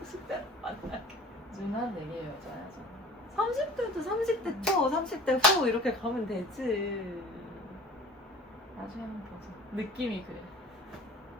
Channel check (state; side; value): normal; both; correlation 0.43